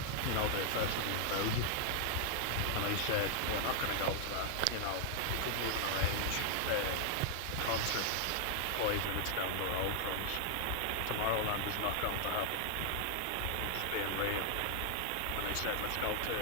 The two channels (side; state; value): both; different; correlation 0.00